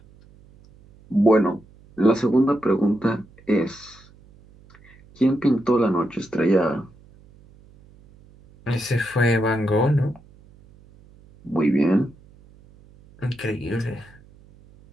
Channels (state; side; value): noise; right; hum, 26 dB below the sound